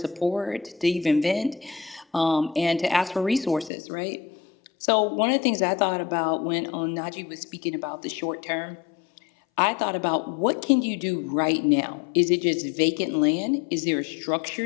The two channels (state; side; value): drops out; right; at 3.7 s